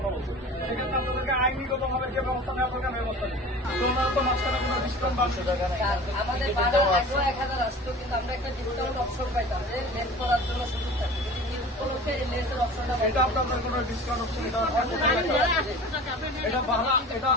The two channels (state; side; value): normal; both; correlation 0.39